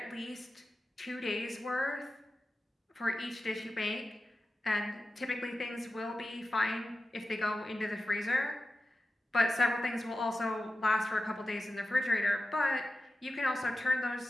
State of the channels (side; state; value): both; normal; correlation 0.93